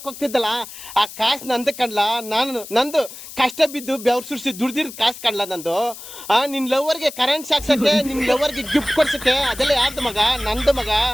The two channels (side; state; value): left; noise; hiss, 14 dB below the sound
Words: ಹೋಗ್ತಿದ್ದಲ್ಲ, ಆ ಕಾಸ್ ನಂದು ಕಣ್ಲ. ನಂದು ಕಷ್ಟ ಬಿದ್ದು ಬೆವ್ರು ಸುರಿಸಿ ದುಡ್ದಿರೋದ್ ಕಾಸ್ ಕಣ್ಲ ನಂದು. ನಿನ್ ಲವರ್ಗೆ ಕರೆಂಟ್ ಸಾಕ್ಸಕ್ಕೆ, ನಿನ್ ಲವರ್ಗೆ ಗಿಫ್ಟ್ ಕೊಡ್ಸಕ್ಕೆ, ಅದೆಲ್ಲ ಯಾರ್ದು ಮಗ? ನಂದು ಮಗ.